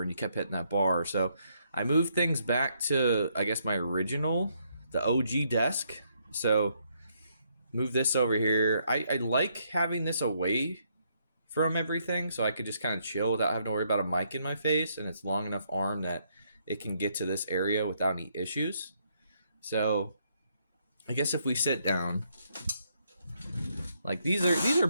and you kept hitting that bar. So I moved things back to, I guess, my original, the OG desk. So move this over here. I like having this away from everything so I could just kind of chill without having to worry about a mic in my face, and it's long enough arm that it can get to this area without any issues. So I guess if we sit down, like these are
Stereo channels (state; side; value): inverted; both; correlation -0.73